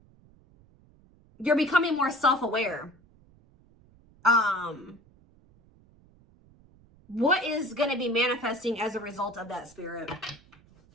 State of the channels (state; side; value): noise; right; rumble, 29 dB below the sound